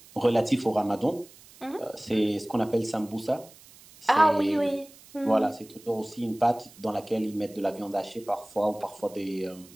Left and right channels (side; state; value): right; noise; hiss, 23 dB below the sound